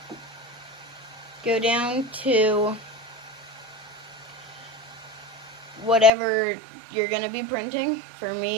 Go down to whatever you're going to be printing. For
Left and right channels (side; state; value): left; drops out; at 6.1 s